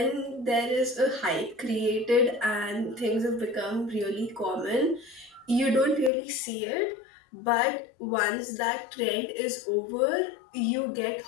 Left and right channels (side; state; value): right; drops out; at 6.1 s